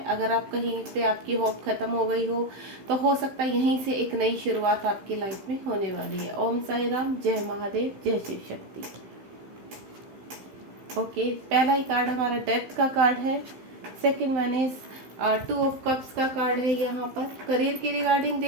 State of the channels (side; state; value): left; late; 15 ms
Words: अगर आप कहीं पे आपकी होप खत्म हो गई हो, तो हो सकता है यहीं से एक नई शुरुआत आपकी लाइफ में होने वाली है। ओम साई राम, जय महादेव, जय शिव शक्ति। ओके, पहला ही कार्ड हमारा डेथ का कार्ड है। Second one is 2 of cups का कार्ड है। यहाँ पर करियर के रिगार्डिंग